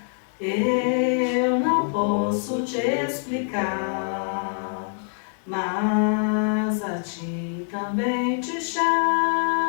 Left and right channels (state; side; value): silent; right; 60 dB below the other